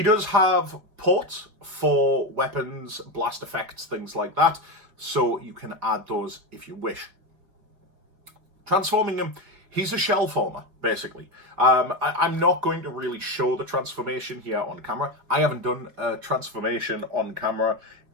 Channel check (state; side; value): late; left; 4.5 ms